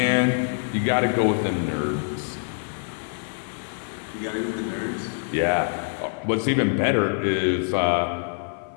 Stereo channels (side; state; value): right; silent; 62 dB below the other